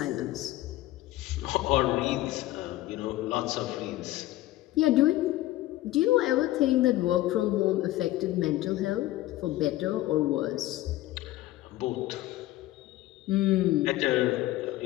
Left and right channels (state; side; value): quieter; right; 16.1 dB